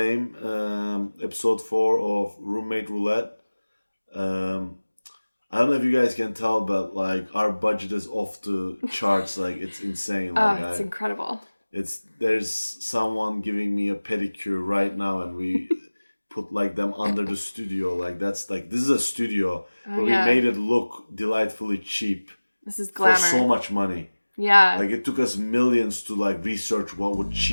episode 4 of Roommate Roulette. I don't know if you guys can tell, but, like, our budget is off the charts. Like, it's insane. Like, it's incredible. There's someone giving me a pedicure right now, and we put, like, them under the studio. Like, this is a studio, but we made it look delightfully cheap. This is glamour. For so much money. Yeah. Like, it took us millions to, like, research what would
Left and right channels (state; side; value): inverted; both; correlation -1.00